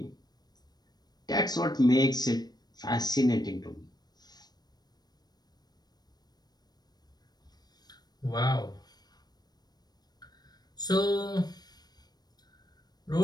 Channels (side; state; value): right; late; 0.19 ms